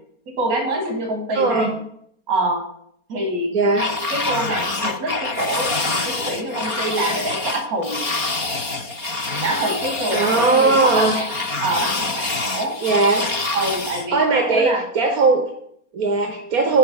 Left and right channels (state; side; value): late; left; 4.3 ms